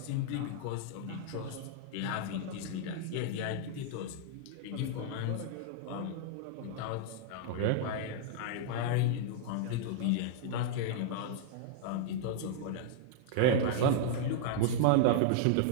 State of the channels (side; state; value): both; different; correlation -0.01